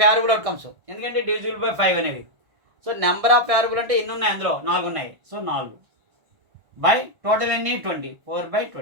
ఫేవరబుల్ అవుట్కమ్స్. ఎందుకంటే డివిజిబుల్ బై 5 అనేవి. సో నెంబర్ ఆఫ్ ఫేవరబుల్ అంటే ఎన్ని ఉన్నాయి? అందులో 4 ఉన్నాయి. సో 4 బై టోటల్ ఎన్ని? 20. 4 బై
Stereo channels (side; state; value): left; late; 1.4 ms